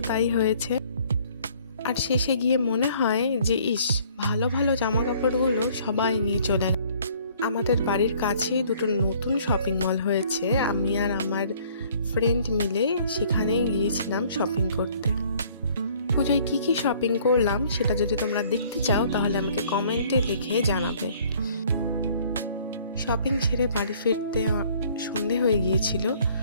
তাই হয়েছে। আর শেষে গিয়ে মনে হয় যে ভালো ভালো জামা কাপড়গুলো সবাই নিয়ে চলে গেল। আমাদের বাড়ির কাছেই দুটো নতুন শপিং মল হয়েছে, আমি আর আমার ফ্রেন্ড মিলে সেখানে গিয়েছিলাম শপিং করতে। পুজোয় কী কী শপিং করলাম সেটা যদি তোমরা দেখতে চাও তাহলে আমাকে কমেন্টে লিখে জানাবে। শপিং ছেড়ে বাড়ি ফিরতে সন্ধে হয়ে গিয়েছিল।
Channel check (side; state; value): both; inverted; correlation -0.58